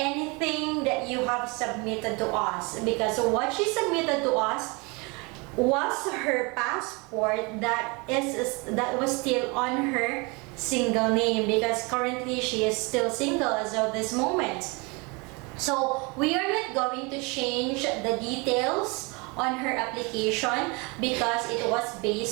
that you have submitted to us, because what she submitted to us was her passport that was still on her single name, because currently she is still single as of this moment. So we are not going to change the details on her application because it was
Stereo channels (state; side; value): quieter; left; 28.8 dB